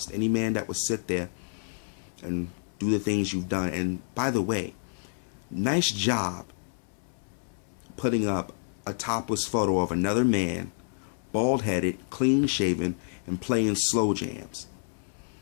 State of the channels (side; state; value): right; silent; 59 dB below the other